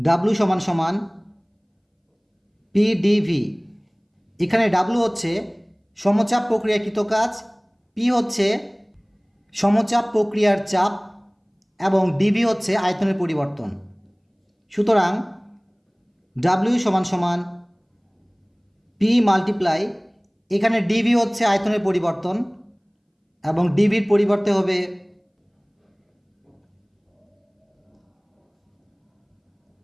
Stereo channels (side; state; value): both; identical; correlation 1.00